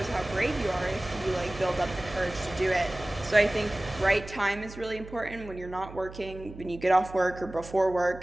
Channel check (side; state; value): right; noise; hum, 15 dB below the sound